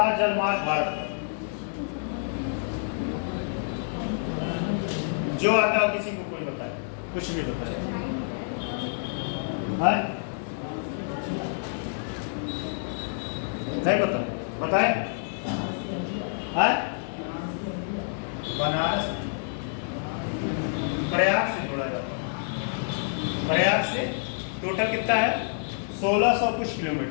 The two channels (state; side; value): silent; right; digital silence